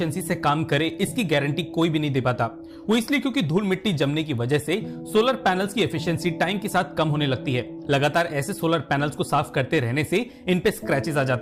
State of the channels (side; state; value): both; identical; correlation 1.00